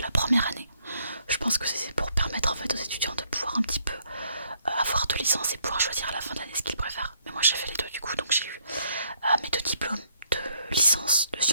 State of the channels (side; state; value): both; inverted; correlation -0.69